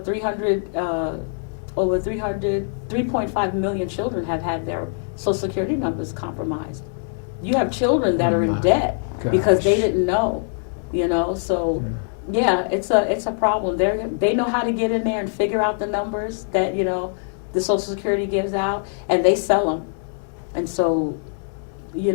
million children have had their Social Security numbers compromised you have children that Oh, are in my debt because they gosh. didn't know, so yeah, it's a problem. They know how to get in there and figure out the numbers that, the Social Security gives out, and they sell them. And so,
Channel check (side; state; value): right; silent; digital silence